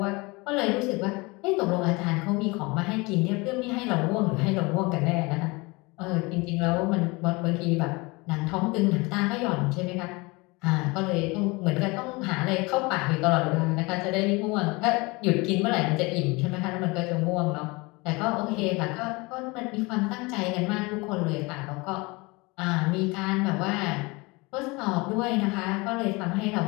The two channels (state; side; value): quieter; right; 25.3 dB